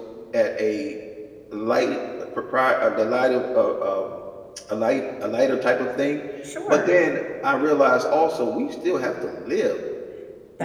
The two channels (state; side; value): identical; both; correlation 1.00